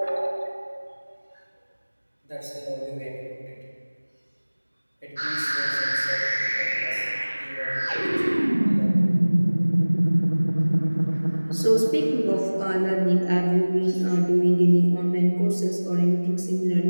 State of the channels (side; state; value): both; inverted; correlation -1.00